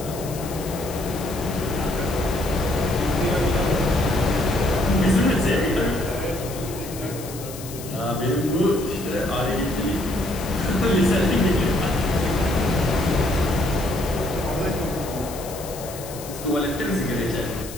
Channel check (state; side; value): noise; left; hiss, 13 dB below the sound